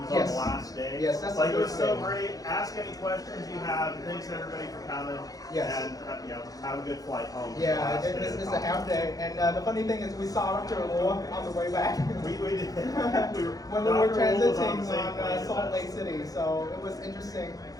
was on the last day. Yes, that's like it was so great. Ask any questions you have. Thanks everybody for coming. Yes. And have a good flight home. Yeah, it's a half day. And the funny thing is we saw Dr. Luo on the way back. We did. When we were transiting on Salt Lake City. So it was interesting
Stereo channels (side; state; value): right; late; 0.17 ms